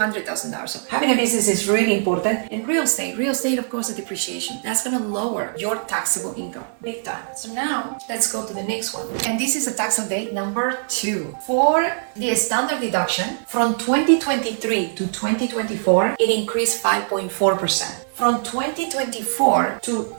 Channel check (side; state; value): left; silent; 64 dB below the other